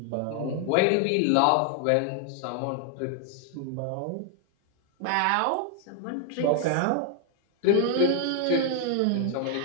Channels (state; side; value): different; both; correlation 0.00